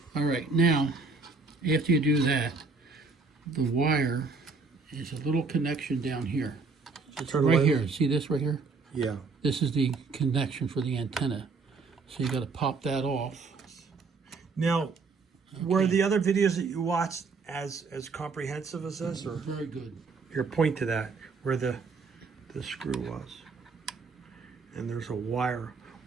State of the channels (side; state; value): left; quieter; 4.3 dB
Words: all right. Now, after you do that, the wire is a little connection down here. It's right here. See this right here? Yeah. This is the connection for the antenna. So you got to pop that off. Now, were the other videos that you watched as comprehensive as this? Or Very good. here, point to that, where the screw was. And there's a wire.